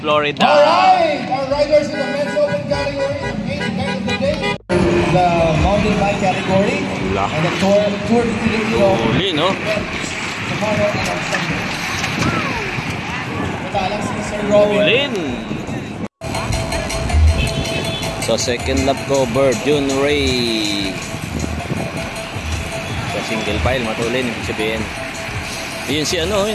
Alright, our riders in the men's open category, the main event of the day, the mountain bike category, and the Tour de Filipino. Huli, no? Tomorrow and on Sunday. Matalang si Sir Robin. Hulin. So second lap cover, June Ray. Sa single file, matulin, ibig sabihin. Yun si ano,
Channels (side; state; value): both; identical; correlation 1.00